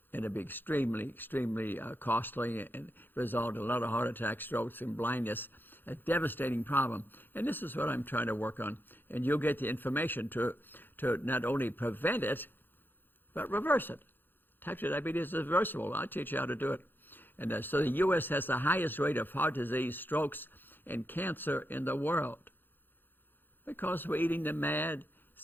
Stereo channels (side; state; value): right; late; 0.095 ms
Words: And it'll be extremely, extremely costly and result in a lot of heart attacks, strokes, and blindness. A devastating problem. And this is what I'm trying to work on. And you'll get the information to not only prevent it, but reverse it. Type 2 diabetes is reversible. I'll teach you how to do it. And so the U.S. has the highest rate of heart disease, strokes, and cancer in the world because we're eating the mad,